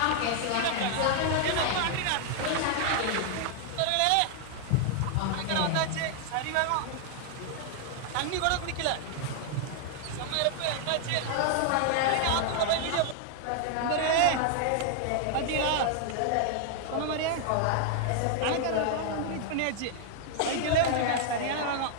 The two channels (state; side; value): different; both; correlation 0.00